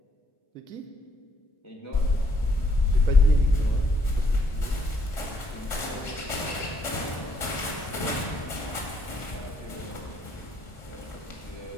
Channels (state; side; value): late; right; 1.6 ms